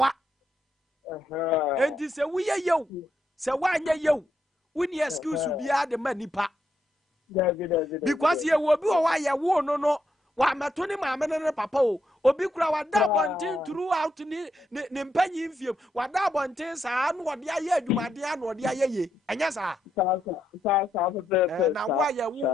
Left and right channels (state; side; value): normal; both; correlation 0.80